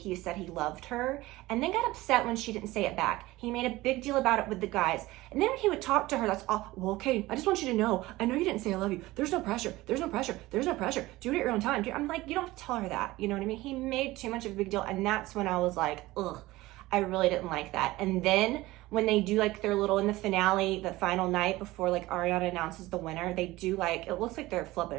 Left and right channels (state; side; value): quieter; left; 18.6 dB